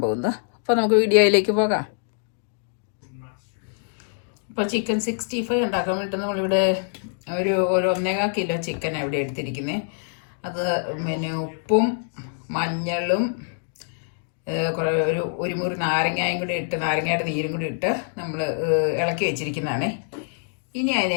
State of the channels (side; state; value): right; silent; digital silence